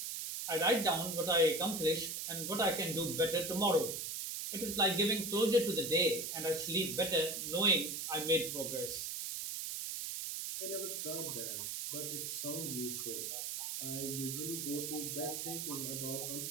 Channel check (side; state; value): right; noise; hiss, 4 dB below the sound